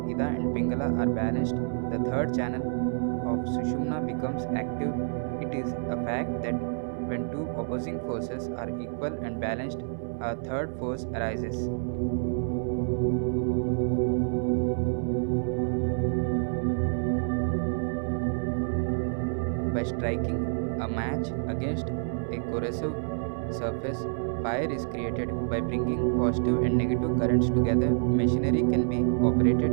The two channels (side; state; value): left; silent; 59 dB below the other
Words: Ida and Pingala are balanced, the third channel of Sushumna becomes active. It is a fact that when two opposing forces are equal and balanced, a third force arises. By striking a match against a corrosive surface, fire is created. By bringing positive and negative currents together, machinery can be operated.